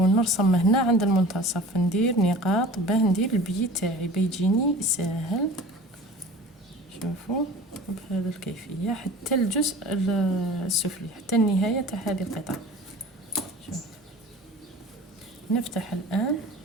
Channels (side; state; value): both; normal; correlation 0.41